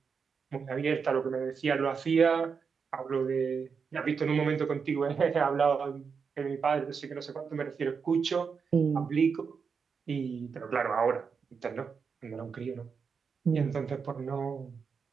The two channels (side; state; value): left; quieter; 5.8 dB